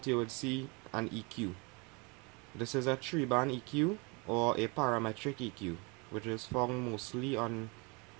you would see an EQ. This is a 3-band EQ or a parametric EQ, which is found mostly on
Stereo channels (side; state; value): left; quieter; 29.7 dB